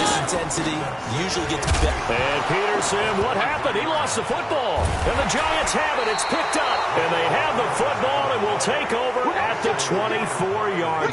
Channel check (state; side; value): identical; both; correlation 1.00